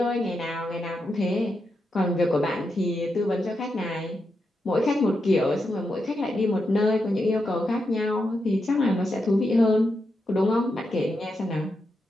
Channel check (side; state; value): both; normal; correlation 0.85